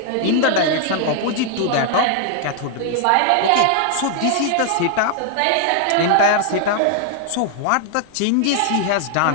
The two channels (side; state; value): both; different; correlation 0.00